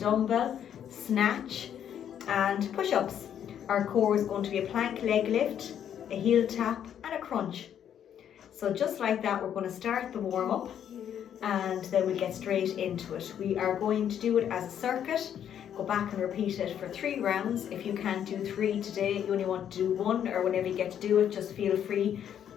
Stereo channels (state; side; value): quieter; right; 9.5 dB